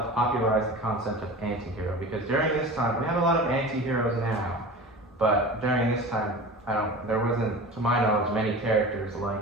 the concept of anti-hero, because during this time, we have a lot of anti-heroes now, but during this time, there wasn't, to my knowledge, many characters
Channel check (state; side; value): normal; both; correlation 0.34